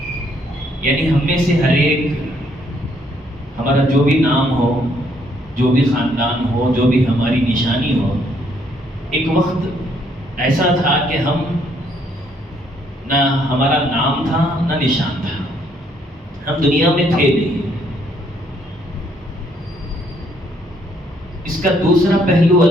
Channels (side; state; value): both; normal; correlation 0.69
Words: یعنی ہم میں سے ہر ایک، ہمارا جو بھی نام ہو، جو بھی خاندان ہو، جو بھی ہماری نشانی ہو، ایک وقت ایسا تھا کہ ہم نہ ہمارا نام تھا نہ نشان تھا، ہم دنیا میں تھے نہیں. اس کا دوسرا پہلو